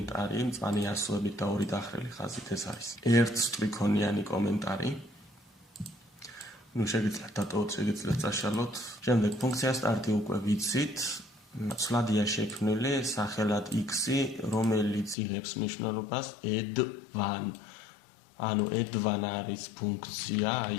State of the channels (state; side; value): drops out; right; at 15.2 s